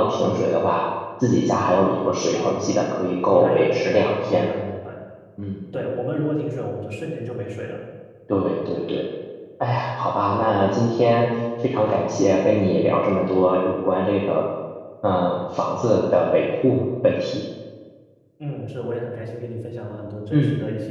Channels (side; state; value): both; identical; correlation 1.00